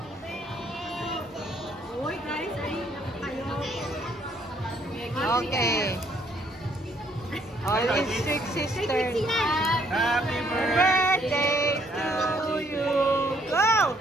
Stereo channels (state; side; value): normal; both; correlation 0.67